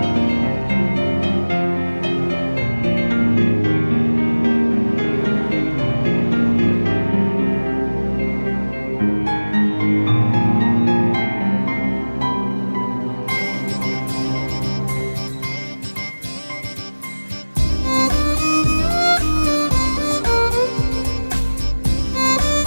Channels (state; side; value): inverted; both; correlation -1.00